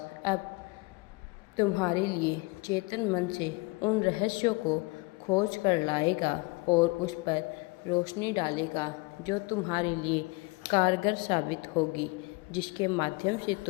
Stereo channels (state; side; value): quieter; right; 26.4 dB